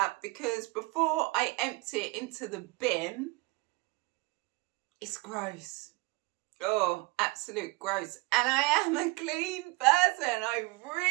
because before I empty it into the bin, it's gross. Oh, absolute gross. And I am a clean person. I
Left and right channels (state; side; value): quieter; left; 24.3 dB